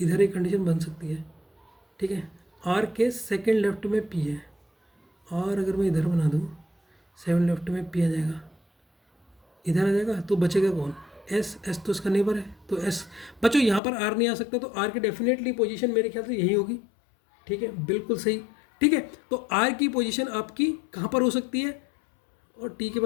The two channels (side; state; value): right; drops out; at 13.8 s